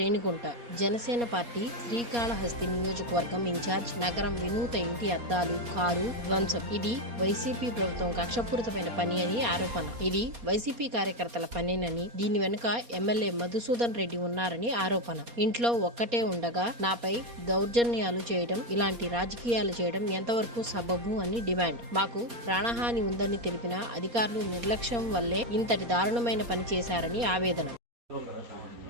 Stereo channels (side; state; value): left; late; 4.2 ms